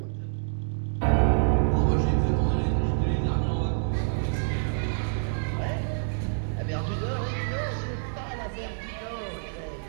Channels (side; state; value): left; silent; digital silence